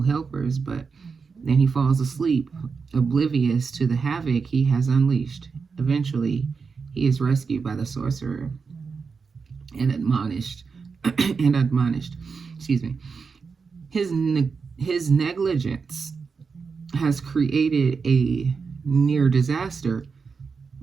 helpers, but then he falls asleep, oblivious to the havoc he has unleashed. Eventually, he is rescued by the sorcerer and admonished, and admonished. Excuse me. His negligence has created a near disaster,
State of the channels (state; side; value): quieter; left; 5.2 dB